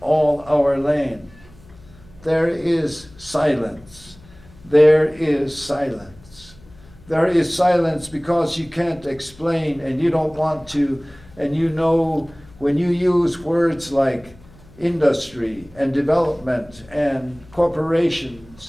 our land? There is silence. There is silence. There is silence because you can't explain, and you don't want to, and you know when you use words like industry and development and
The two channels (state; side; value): noise; left; hum, 24 dB below the sound